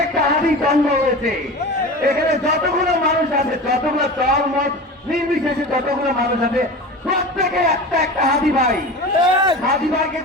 একটা হাদি জন্ম হয়েছে। এখানে যতগুলো মানুষ আছে, যতগুলো দল মত নির্বিশেষে যতগুলো মানুষ আছে, প্রত্যেকে একটা একটা হাদি ভাই। হাদি ভাইকে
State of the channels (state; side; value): normal; both; correlation 0.32